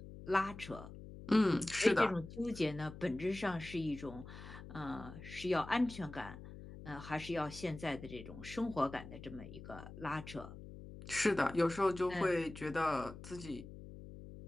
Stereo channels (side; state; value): left; noise; hum, 13 dB below the sound